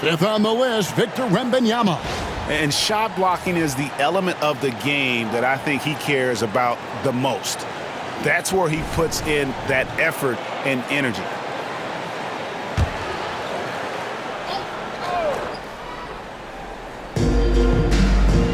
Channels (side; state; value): both; identical; correlation 1.00